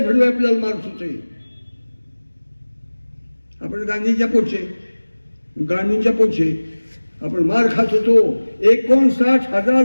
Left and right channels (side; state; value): both; inverted; correlation -1.00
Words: आपल्याला मारत होते. आपण गांधींच्या पोटचे आपण मार खात होतो. 59,000